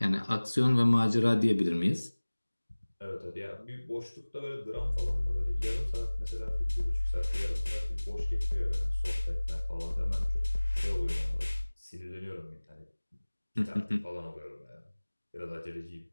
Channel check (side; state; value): both; inverted; correlation -1.00